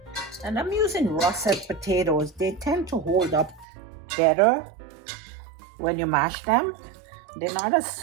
And I'm using russet potatoes. They tend to hold up better when you mash them. They're not as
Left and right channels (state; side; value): drops out; left; at 3.7 s